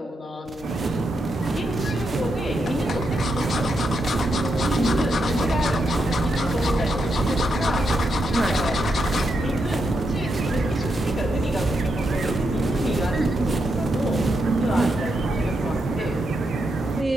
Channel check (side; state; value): both; normal; correlation 0.83